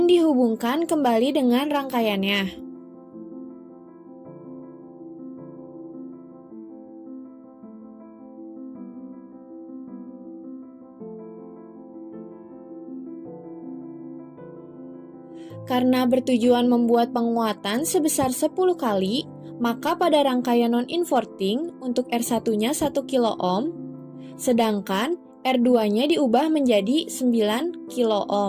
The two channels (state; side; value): identical; both; correlation 1.00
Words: dihubungkan kembali dengan rangkaiannya. Karena bertujuan membuat penguatan sebesar 10 kali, maka pada rangkaian non-inverting untuk R1-nya 1 kilo-ohm, sedangkan R2-nya diubah menjadi 9